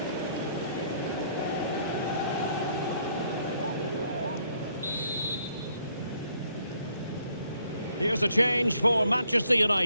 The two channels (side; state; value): both; inverted; correlation -0.68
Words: Here's a change for Manchester